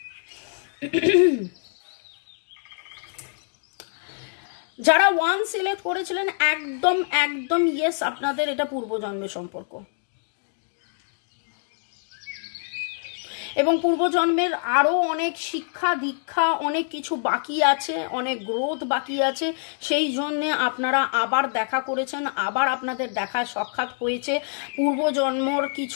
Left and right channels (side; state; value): right; silent; 62 dB below the other